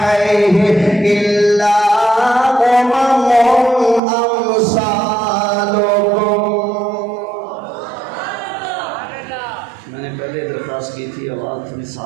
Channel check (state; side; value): drops out; left; at 4.0 s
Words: إِلَّا أُمَمٌ أَمْثَالُكُمْ. میں نے پہلے درخواست کی تھی آواز تھوڑی